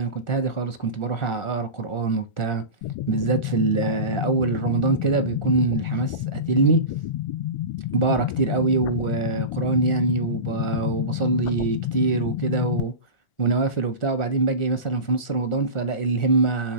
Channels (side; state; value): right; late; 1.4 ms